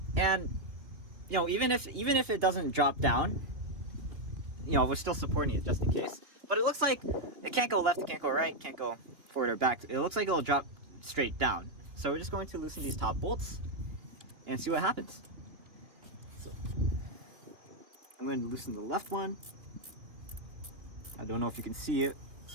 you know, even if it doesn't drop down, you know, we're still supporting it just in case. But it looks like it can't go left, it can't go right, can't go forward or back. It looks like it'll drop straight down. So we're just going to loosen these top bolts and see what happens. So I'm going to loosen the left one. I don't know if you can see it,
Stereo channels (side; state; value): left; late; 2.9 ms